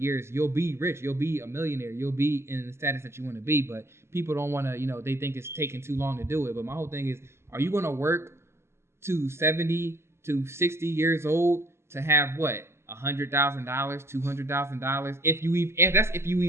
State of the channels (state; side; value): late; left; 0.12 ms